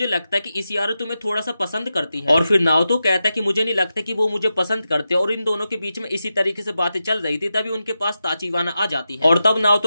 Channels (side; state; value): both; inverted; correlation -0.90